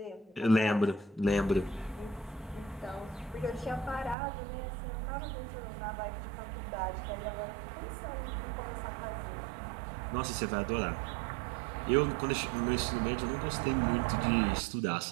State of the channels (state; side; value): drops out; left; at 4.2 s